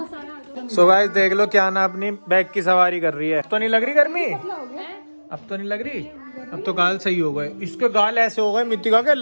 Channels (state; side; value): inverted; both; correlation -1.00